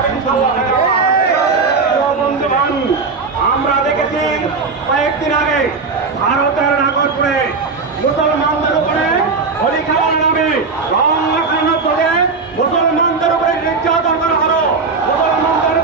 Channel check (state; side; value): quieter; left; 4.4 dB